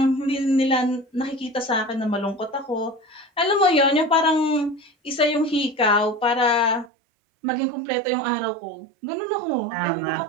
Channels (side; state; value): left; drops out; at 6.9 s